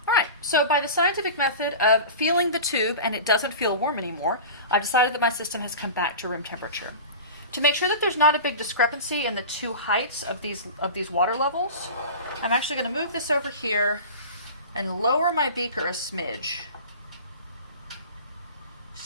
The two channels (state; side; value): inverted; both; correlation -0.33